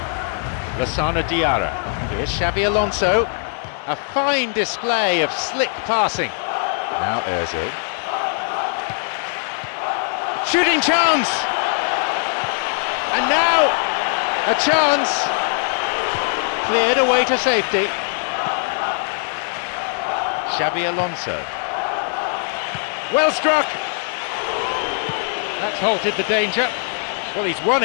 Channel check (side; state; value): right; silent; 65 dB below the other